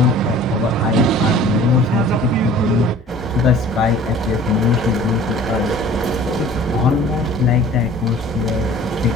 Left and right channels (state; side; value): normal; both; correlation 0.47